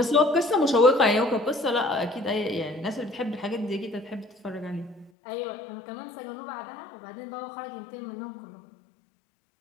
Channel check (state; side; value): drops out; right; at 5.1 s